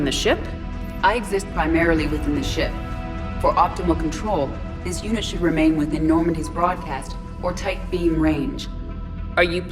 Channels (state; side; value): identical; both; correlation 1.00